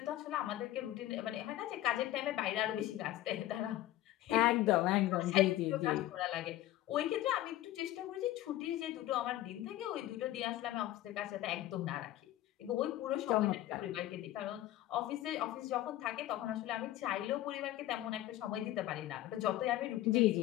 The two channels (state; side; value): quieter; right; 14.6 dB